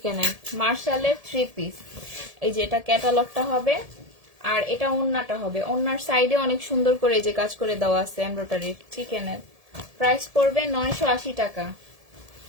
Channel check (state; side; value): late; left; 1.7 ms